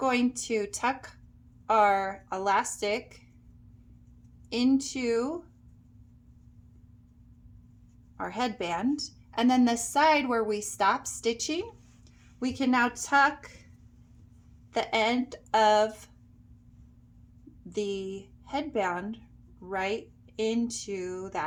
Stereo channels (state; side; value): identical; both; correlation 1.00